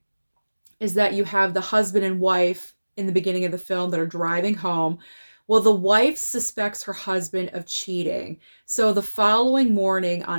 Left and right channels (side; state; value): both; inverted; correlation -1.00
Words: is that you have the husband and wife in the beginning of the film that are driving home. Well, the wife suspects her husband of cheating. So the following morning